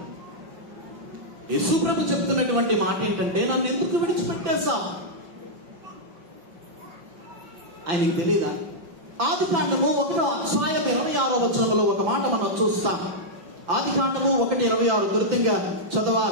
యేసు ప్రభు చెప్తున్నటువంటి మాట ఏంటంటే, నన్ను ఎందుకు విడిచిపెట్టేసా? ఆయనకు తెలియదా? ఆదికాండము 1:26 ఒక మాట మనం చూస్తాం. ఆదికాండము 1:26 త్వరితంగా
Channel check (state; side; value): late; left; 5.8 ms